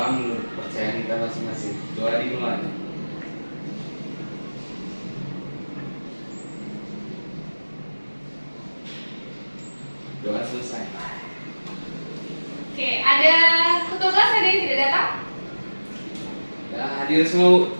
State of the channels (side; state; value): both; inverted; correlation -1.00